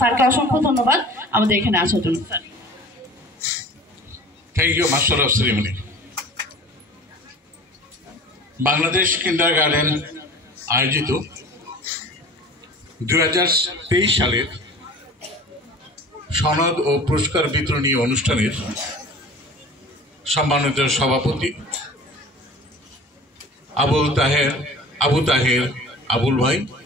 স্যারকে অসংখ্য ধন্যবাদ আমাদের এখানে আসার জন্য। Thank you master of ceremony. Bangladesh kindergarten আয়োজিত 2023 সালের সনদ ও পুরস্কার বিতরণী অনুষ্ঠানের সম্মানিত সভাপতি আবু তাহের আবুল ভাই,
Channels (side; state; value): both; normal; correlation 0.42